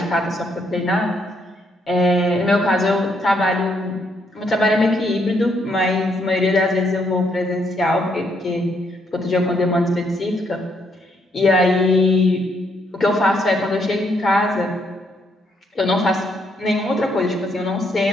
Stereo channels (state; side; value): normal; both; correlation 0.74